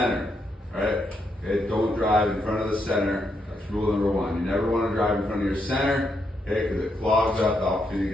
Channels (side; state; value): both; normal; correlation 0.79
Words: Right? Okay, don't drive in front of the center. That's rule number one. You never want to drive in front of your center, okay, because it clogs up the opportunity